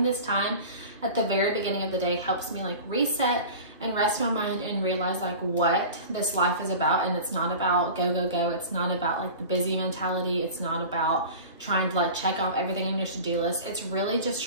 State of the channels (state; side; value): inverted; both; correlation -0.36